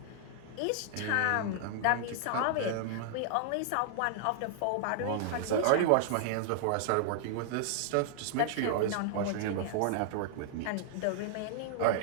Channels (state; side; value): different; both; correlation -0.01